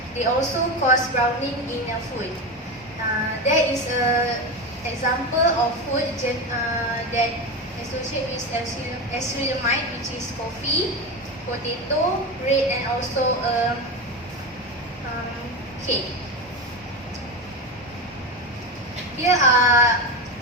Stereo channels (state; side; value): normal; both; correlation 0.19